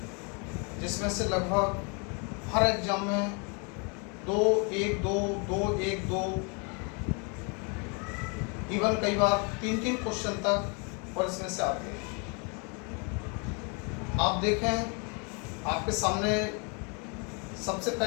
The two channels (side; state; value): right; quieter; 34.5 dB